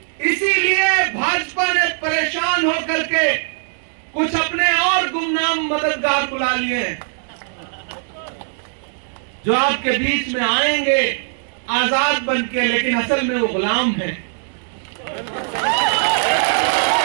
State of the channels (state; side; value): silent; left; 60 dB below the other